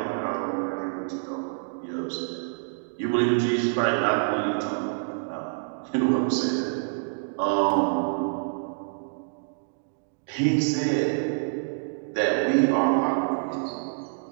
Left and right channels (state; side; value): silent; left; digital silence